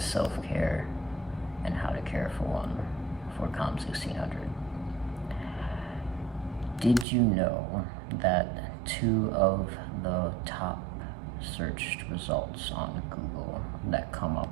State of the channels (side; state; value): left; drops out; at 7.1 s